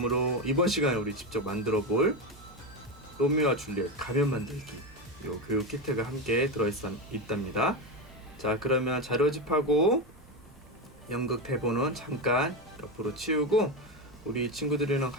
이번 시간에 우리 직접 만들어 볼 로미오와 줄리엣 가면 만들기 요 교육 키트가 함께 있답니다. 자, 그러면 자료집하고 연극 대본은 잠깐 옆으로 치우고 우리 친구들이랑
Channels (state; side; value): normal; both; correlation 0.15